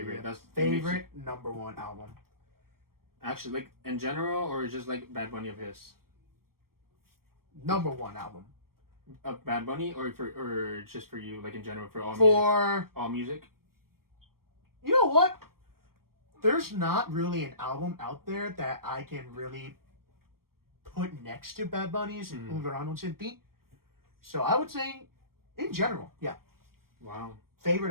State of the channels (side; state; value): left; late; 0.93 ms